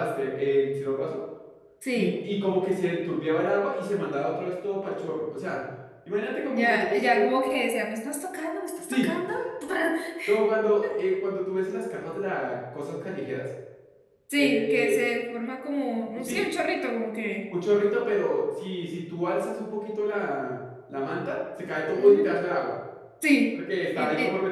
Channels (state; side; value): identical; both; correlation 1.00